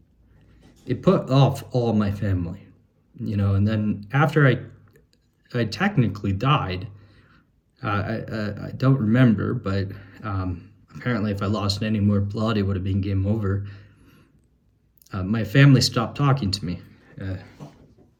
it put off all my family, and then after I technically died, I don't remember, but apparently if I lost any more blood, it would have been game over. My family stopped talking to me,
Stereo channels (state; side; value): identical; both; correlation 1.00